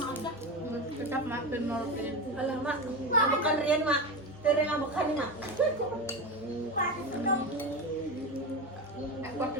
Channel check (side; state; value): both; normal; correlation 0.20